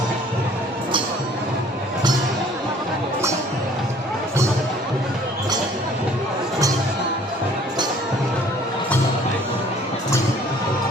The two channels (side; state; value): both; normal; correlation 0.55